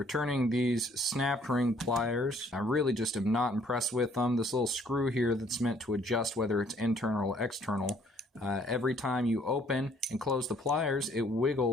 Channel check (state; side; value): normal; both; correlation 0.62